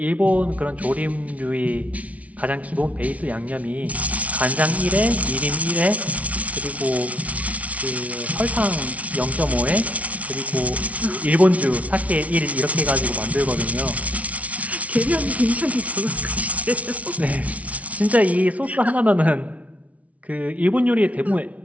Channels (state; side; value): late; left; 0.067 ms